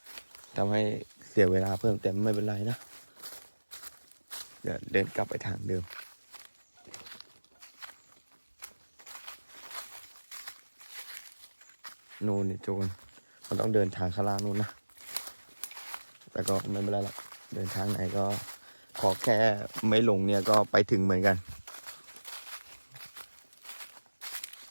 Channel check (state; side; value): inverted; both; correlation -1.00